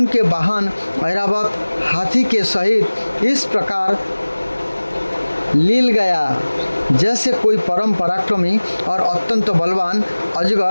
वाहन ऐरावत हाथी के सहित इस प्रकार लील गया जैसे कोई परम पराक्रमी और अत्यंत बलवान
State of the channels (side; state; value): both; inverted; correlation -1.00